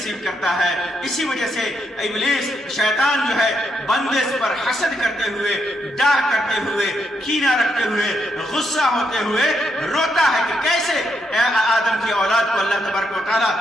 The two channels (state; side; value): normal; both; correlation 0.78